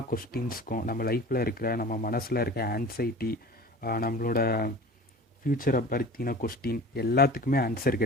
கொஸ்டின்ஸ்க்கும், நம்ம லைஃப்பில் இருக்கிற, நம்ம மனசில் இருக்க ஆன்சைட்டி, நம்மளோட ஃப்யூச்சரை பற்றின கொஸ்டின் எல்லாத்துக்குமே ஆன்சர்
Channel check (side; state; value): both; normal; correlation 0.39